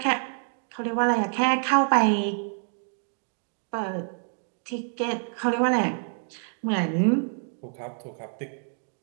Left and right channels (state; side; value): silent; left; digital silence